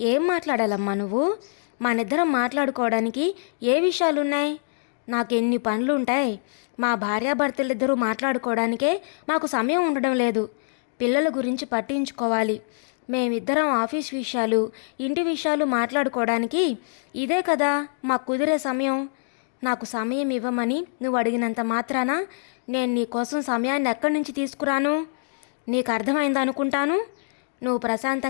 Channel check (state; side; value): silent; right; digital silence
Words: ఏం మాట్లాడాలమ్మా నువ్వు? మనిద్దరం మాట్లాడుకోవడానికి ఏ విషయాలున్నాయి? నాకెన్ని పనులుంటాయి. మా భార్యాభర్తలిద్దరూ మాట్లాడుకోవడానికే మాకు సమయం ఉండడం లేదు. పిల్లల గురించి పట్టించుకోవాలి. మేమిద్దరం ఆఫీస్ విషయాలు, ఇంటి విషయాలు మాట్లాడుకోవడానికి ఇదే కదా మాకు కుదిరే సమయం. నాకు సమయం ఇవ్వమని నువ్వు అడిగినంత మాత్రాన నేను నీ కోసం సమయాన్ని ఎక్కడి నుంచి తీసుకురాను? నీకు అర్థమైందనుకుంటాను. నువ్వు